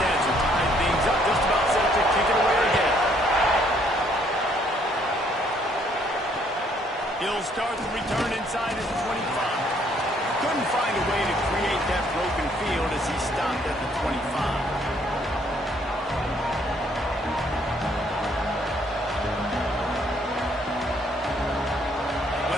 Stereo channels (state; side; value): normal; both; correlation 0.66